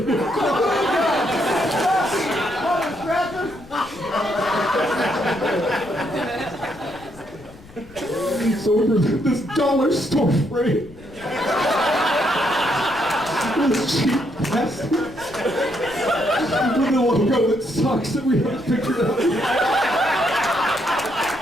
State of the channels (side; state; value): left; noise; rumble, 21 dB below the sound